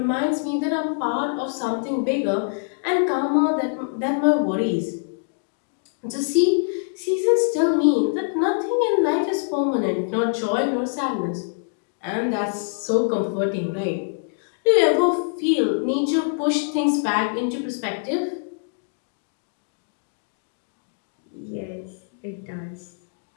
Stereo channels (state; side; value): silent; right; digital silence